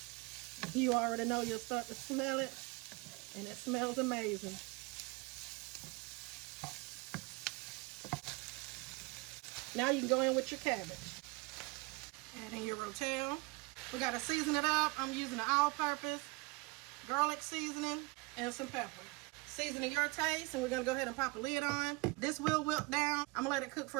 You already know you'll start to smell it, and it smells amazing. Now you can go in with your cabbage. Add in your Rotel. We got to season it up. I'm using an all-purpose garlic seasoning and some pepper. Seasoning your taste, and we're gonna go ahead and pop a lid on. This will wilt down. I'm gonna let it cook for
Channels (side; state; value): left; quieter; 25.8 dB